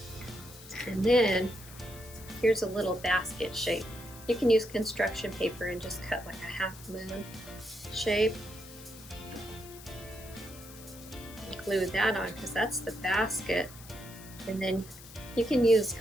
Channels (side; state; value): left; noise; hiss, 17 dB below the sound